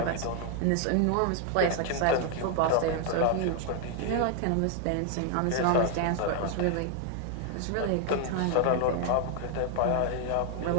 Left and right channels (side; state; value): both; different; correlation 0.00